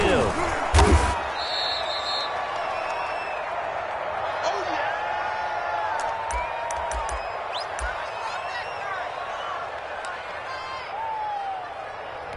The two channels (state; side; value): identical; both; correlation 1.00